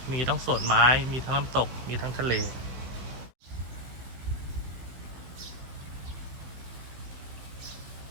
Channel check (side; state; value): left; late; 15 ms